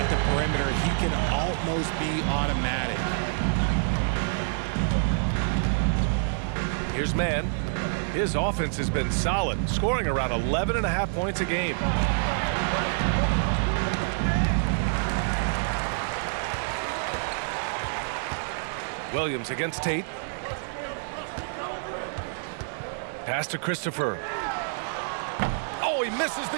the perimeter, he can almost be automatic. Here's Mann. His offense has been solid, scoring around 11.5 points a game. Williams against Tate. Pass to Christopher. Oh, he misses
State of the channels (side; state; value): left; silent; 60 dB below the other